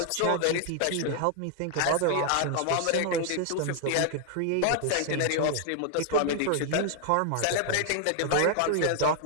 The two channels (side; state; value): both; different; correlation 0.00